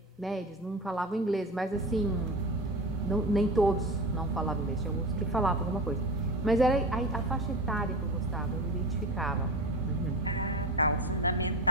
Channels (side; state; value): both; normal; correlation 0.28